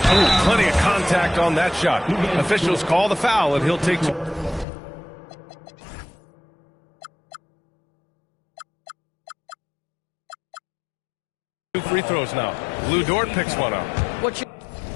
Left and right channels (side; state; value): right; drops out; at 4.7 s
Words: Oh, plenty of contact on that shot. Officials call the foul, and he'll take two. Two free throws now. Lou Dort picks one up. What you